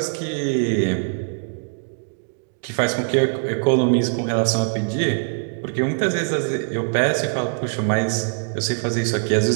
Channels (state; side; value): silent; left; digital silence